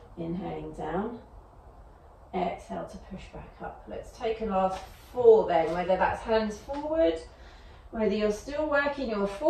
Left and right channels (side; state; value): both; identical; correlation 1.00